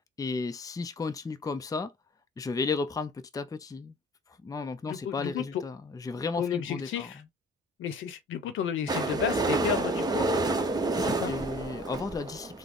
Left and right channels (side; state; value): both; normal; correlation 0.49